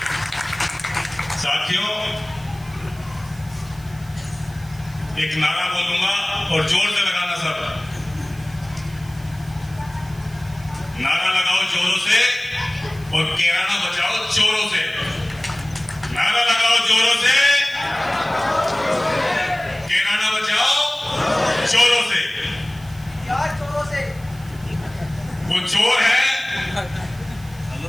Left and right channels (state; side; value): noise; right; hiss, 23 dB below the sound